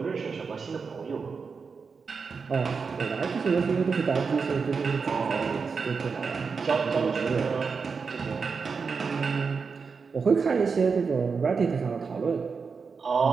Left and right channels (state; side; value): quieter; left; 5.2 dB